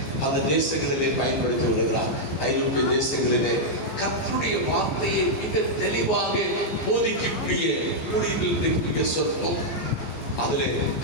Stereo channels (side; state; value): right; late; 15 ms